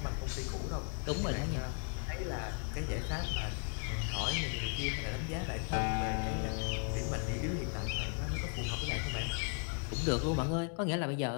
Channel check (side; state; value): right; quieter; 36.7 dB